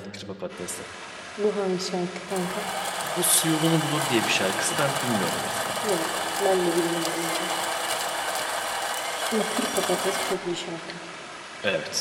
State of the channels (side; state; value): both; identical; correlation 1.00